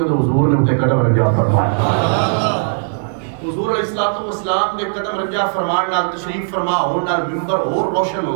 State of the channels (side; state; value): left; silent; 59 dB below the other